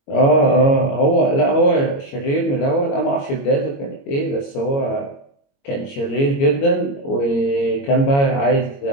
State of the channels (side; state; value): right; late; 22 ms